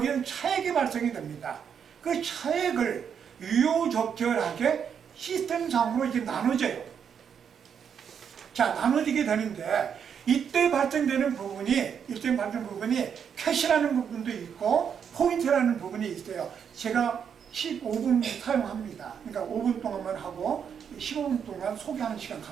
차익이 발생이 됩니다. 그 차익을 유효적절하게 시스템상으로 이제 나눠져요. 자, 나눠지게 되는데 이때 발생되는 부분이 캐시라는 부분도 있고 포인트라는 부분이 있어요. 제가 15분 사용합니다. 그러니까 5분 동안만 하고 15분 동안 소개하는 시간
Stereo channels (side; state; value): left; quieter; 7.5 dB